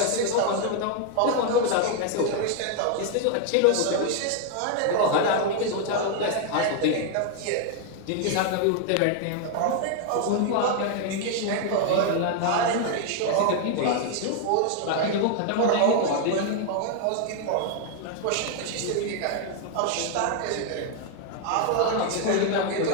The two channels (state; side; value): different; both; correlation 0.00